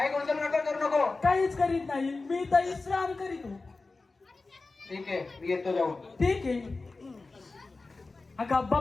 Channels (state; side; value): quieter; right; 3.6 dB